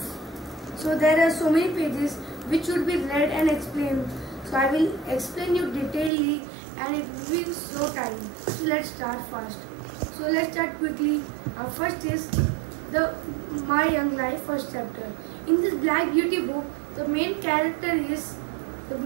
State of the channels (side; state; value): left; drops out; at 6.1 s